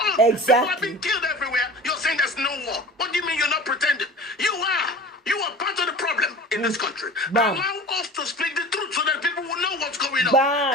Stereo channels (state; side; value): normal; both; correlation 0.38